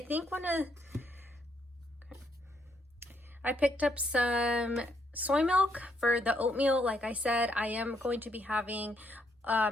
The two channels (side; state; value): both; normal; correlation 0.74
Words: think I picked up some soy milk for the oatmeal. Like I said, I am going to be having